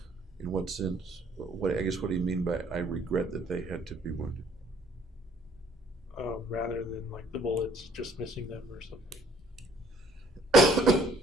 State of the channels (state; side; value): normal; both; correlation 0.59